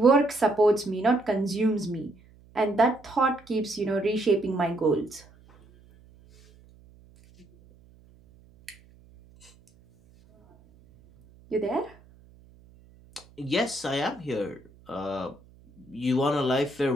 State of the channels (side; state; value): right; noise; hum, 27 dB below the sound